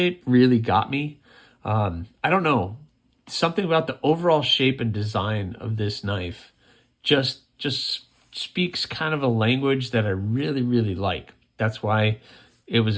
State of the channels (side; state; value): both; identical; correlation 1.00